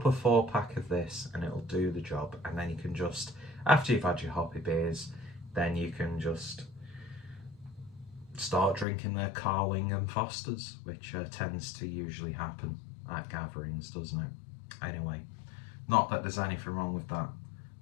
a 4-pack of this and it'll do the job. And then you can just, after you've had your hoppy beers, then you can just start drinking their Carling and Fosters, which tends to usually happen at gatherings, doesn't it? Anyway, not that there's anything wrong with that,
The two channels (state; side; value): drops out; right; at 8.8 s